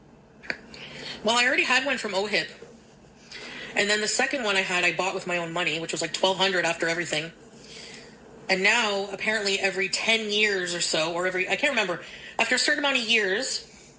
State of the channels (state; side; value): identical; both; correlation 1.00